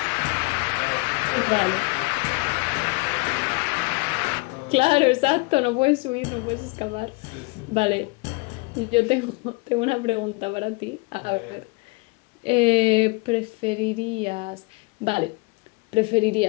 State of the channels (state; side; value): quieter; right; 28.2 dB